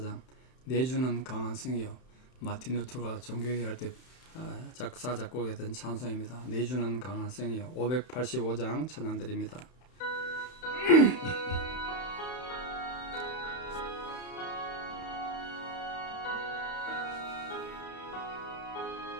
내주는 강한 성이요. 마틴 루터가 종교개혁 할 때 작사 작곡했던 찬송입니다. 내주는 강한 성이요. 585장 찬양 드립니다.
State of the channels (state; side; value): late; right; 31 ms